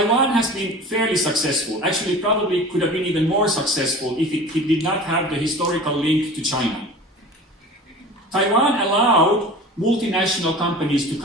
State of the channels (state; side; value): normal; both; correlation 0.38